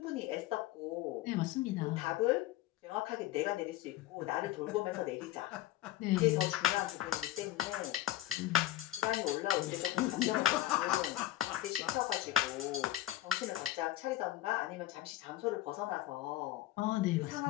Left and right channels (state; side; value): quieter; right; 15.0 dB